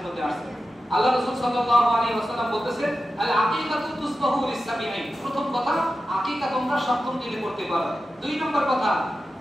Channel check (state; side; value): normal; both; correlation 0.92